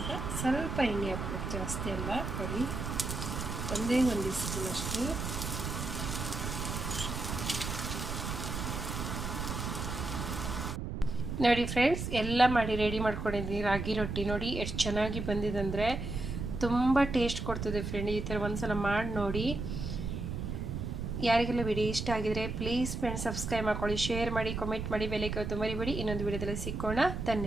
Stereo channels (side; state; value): right; noise; rumble, 4 dB below the sound